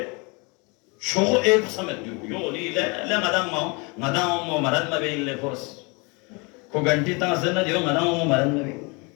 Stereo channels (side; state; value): right; quieter; 29.5 dB